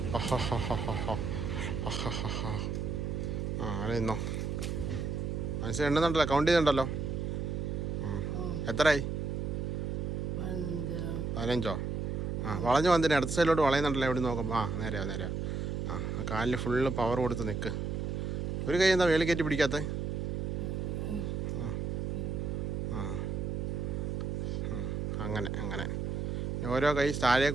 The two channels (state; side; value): noise; right; hum, 2 dB below the sound